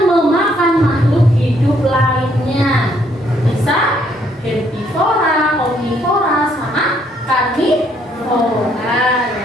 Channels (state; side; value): normal; both; correlation 0.69